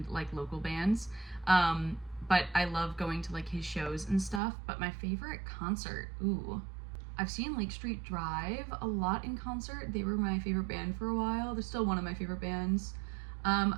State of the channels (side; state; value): left; drops out; at 4.4 s